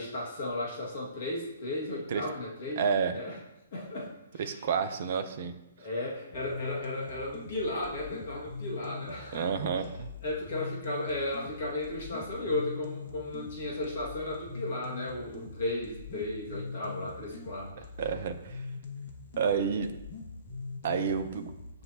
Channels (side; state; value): both; inverted; correlation -0.53